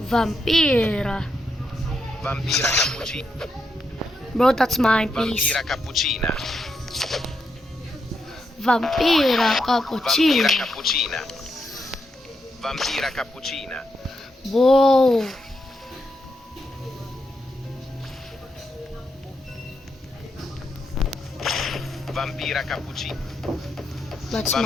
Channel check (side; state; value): both; normal; correlation 0.82